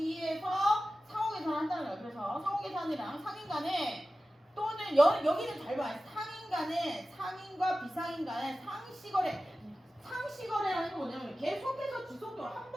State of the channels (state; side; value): normal; both; correlation 0.95